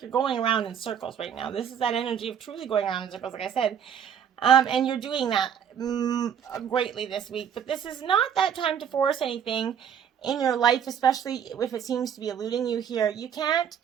going around in circles right now. This is that energy of truly going around in circles, like I said, and you're doing that greatly this week. But this is not that time to force anything in your life, especially if it seems to be eluding you here. You can't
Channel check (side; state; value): left; quieter; 8.4 dB